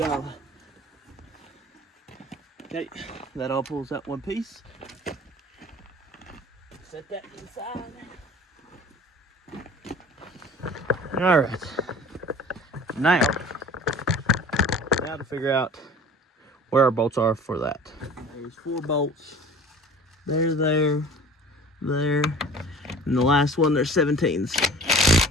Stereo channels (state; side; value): normal; both; correlation 0.44